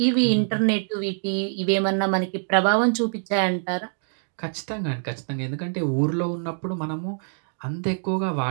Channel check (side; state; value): left; silent; digital silence